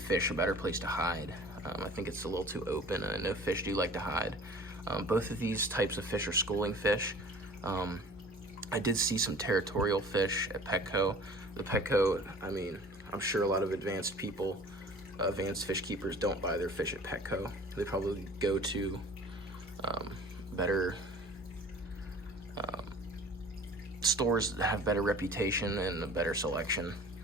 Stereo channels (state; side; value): normal; both; correlation 0.45